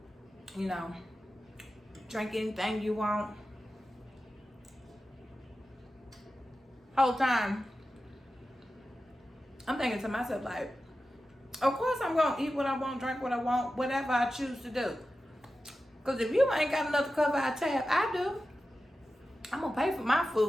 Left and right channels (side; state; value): both; normal; correlation 0.93